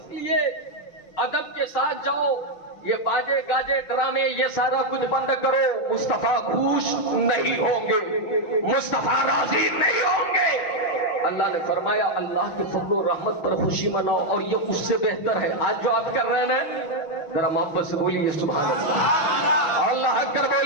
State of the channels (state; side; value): late; right; 6.0 ms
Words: لیے ادب کے ساتھ جاؤ، یہ باجے گاجے ڈرامے یہ سارا کچھ بند کرو، مصطفیٰ خوش نہیں ہوں گے، مصطفیٰ راضی نہیں ہوں گے۔ اللہ نے فرمایا اللہ کے فضل و رحمت پر خوشی مناؤ، اور یہ اس سے بہتر ہے۔ آج جو آپ کر رہے ہیں ذرا محبت سے بولیے سبحان اللہ، اور اللہ اکبر